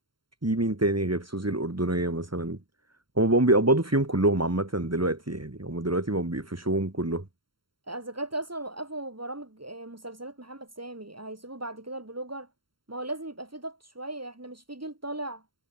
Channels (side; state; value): left; late; 0.73 ms